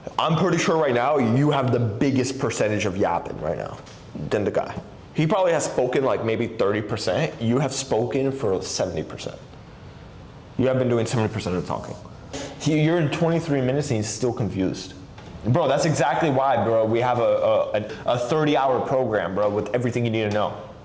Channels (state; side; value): identical; both; correlation 1.00